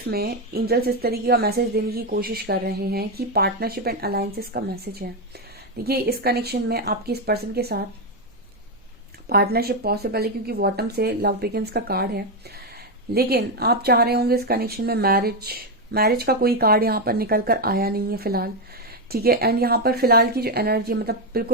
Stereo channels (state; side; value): normal; both; correlation 0.06